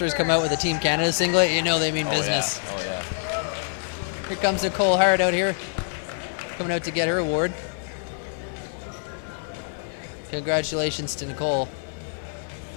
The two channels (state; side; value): silent; right; digital silence